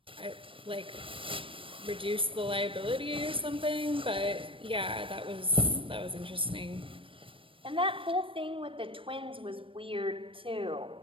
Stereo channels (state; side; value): late; left; 0.25 ms